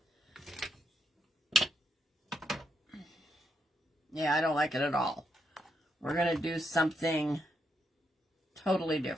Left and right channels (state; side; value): normal; both; correlation 0.80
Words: Yeah, I don't like it at all. We're going to do something totally